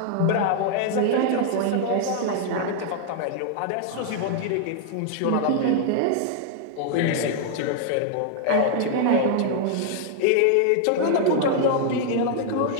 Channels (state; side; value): different; both; correlation 0.00